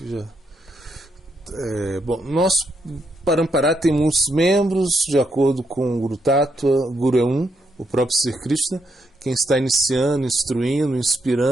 já... bom, nosso Parampara tem muitos membros, de acordo com o Guru Tattva. Guru é o próprio Sri Krishna, quem está iniciando, instruindo,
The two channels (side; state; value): both; normal; correlation 0.78